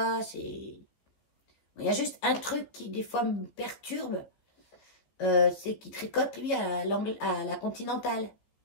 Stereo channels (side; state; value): right; late; 15 ms